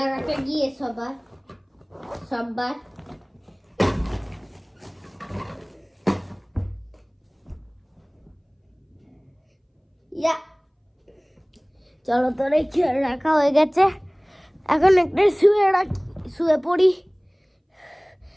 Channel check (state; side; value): identical; both; correlation 1.00